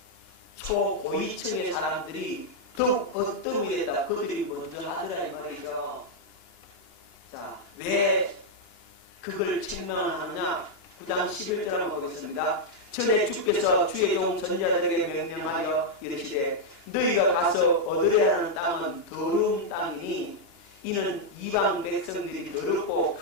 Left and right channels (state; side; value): late; right; 2.9 ms